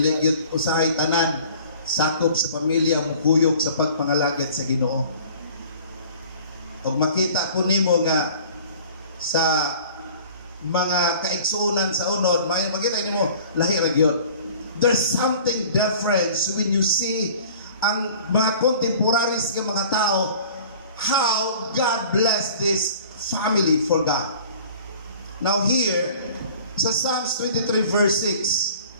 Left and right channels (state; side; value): inverted; both; correlation -0.48